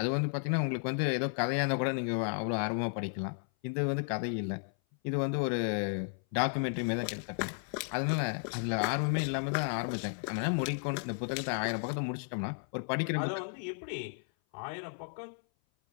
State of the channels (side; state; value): right; silent; 55 dB below the other